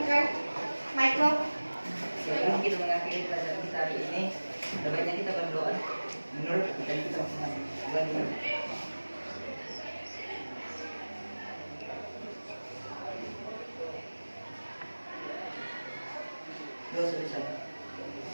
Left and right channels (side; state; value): both; inverted; correlation -1.00